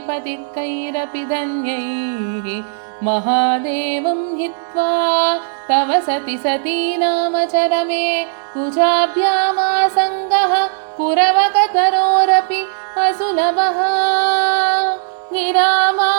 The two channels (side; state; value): left; silent; digital silence